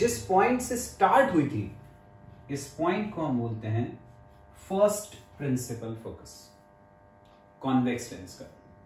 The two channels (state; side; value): identical; both; correlation 1.00